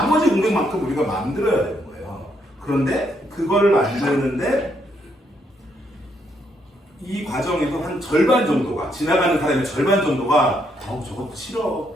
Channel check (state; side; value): normal; both; correlation 0.74